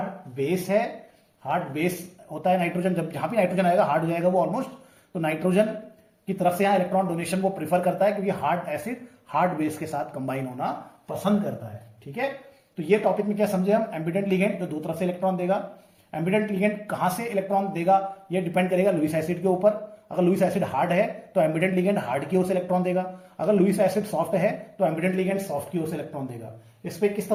बेस है। हार्ड बेस होता है नाइट्रोजन, जब जहां भी नाइट्रोजन आएगा हार्ड हो जाएगा वो ऑलमोस्ट, तो नाइट्रोजन की तरफ से यहां इलेक्ट्रॉन डोनेशन वो प्रीफर करता है, क्योंकि हार्ड एसिड हार्ड बेस के साथ कंबाइन होना पसंद करता है। ठीक है, तो ये टॉपिक में क्या समझे हम, एम्बिडेंट लिगेंड जो दो तरफ से इलेक्ट्रॉन देगा। एम्बिडेंट लिगेंड कहां से इलेक्ट्रॉन देगा, ये डिपेंड करेगा लुईस एसिड के ऊपर। अगर लुईस एसिड हार्ड है तो एम्बिडेंट लिगेंड हार्ड की ओर से इलेक्ट्रॉन देगा, अगर लुईस एसिड सॉफ्ट है तो एम्बिडेंट लिगेंड सॉफ्ट की ओर से इलेक्ट्रॉन देगा। इस पे किस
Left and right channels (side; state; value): both; identical; correlation 1.00